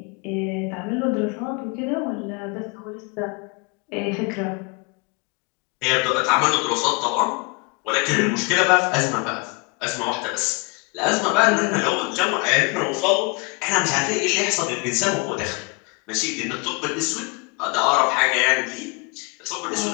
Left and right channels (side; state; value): right; quieter; 30.9 dB